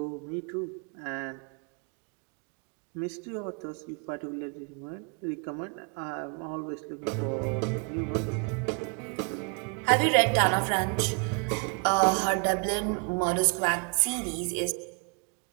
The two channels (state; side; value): quieter; left; 38.5 dB